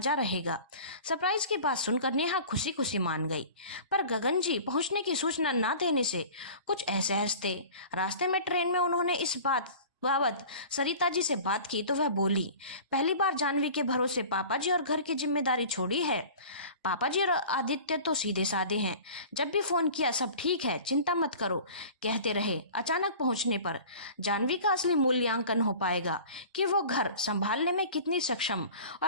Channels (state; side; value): inverted; both; correlation -0.41